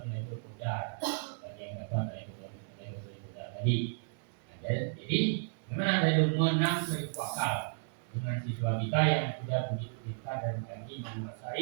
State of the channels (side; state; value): left; silent; digital silence